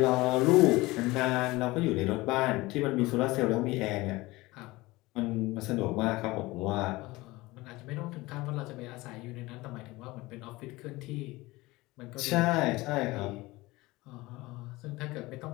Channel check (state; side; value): quieter; right; 20.7 dB